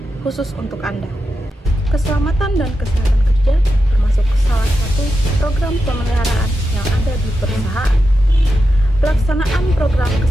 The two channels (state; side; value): normal; both; correlation 0.89